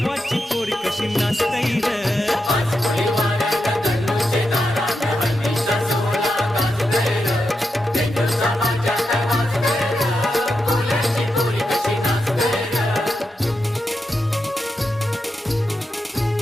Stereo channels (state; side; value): normal; both; correlation 0.86